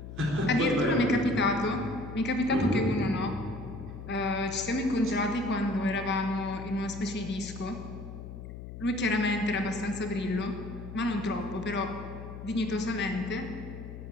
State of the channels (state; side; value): noise; left; hum, 11 dB below the sound